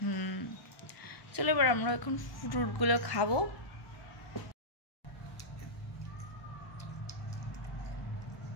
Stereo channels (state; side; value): late; right; 1.1 ms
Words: চলো এবার আমরা এখন ফ্রুটগুলো খাবো।